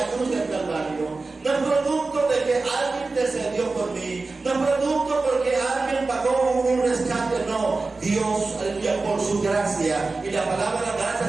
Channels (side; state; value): left; quieter; 3.7 dB